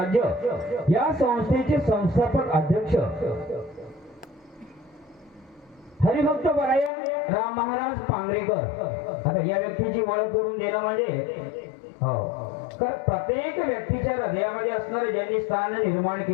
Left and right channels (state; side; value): drops out; right; at 6.9 s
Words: या संस्थेचे संस्थापक अध्यक्ष हरिभक्त परायण राम महाराज पांगरेकर. आता या व्यक्तीची ओळख करून देणं म्हणजे तर प्रत्येक व्यक्तीच्या हृदयामध्ये असणारं ज्यांनी स्थान निर्माण